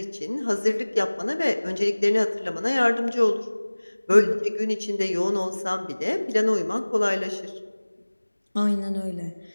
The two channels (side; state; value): both; inverted; correlation -1.00